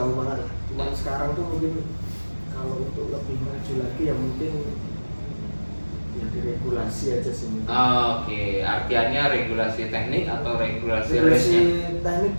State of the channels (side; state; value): both; inverted; correlation -1.00